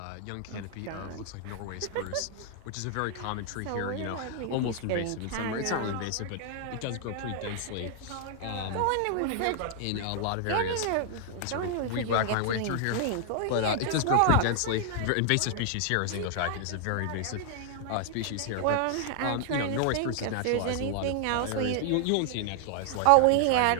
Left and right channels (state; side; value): different; both; correlation 0.00